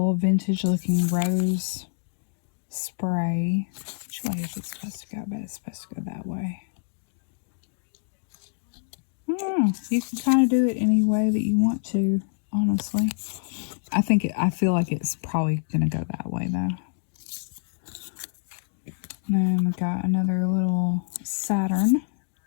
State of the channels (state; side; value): silent; right; digital silence